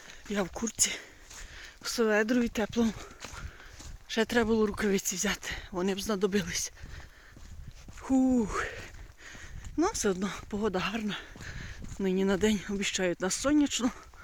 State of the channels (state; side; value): identical; both; correlation 1.00